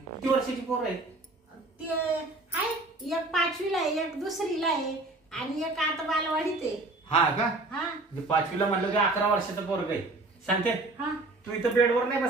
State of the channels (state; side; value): quieter; left; 3.0 dB